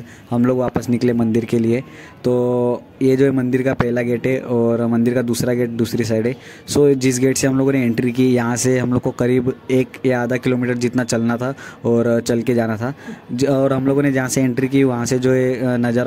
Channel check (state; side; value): identical; both; correlation 1.00